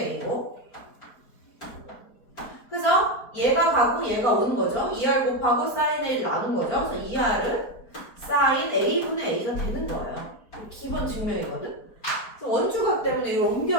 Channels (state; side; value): late; right; 4.4 ms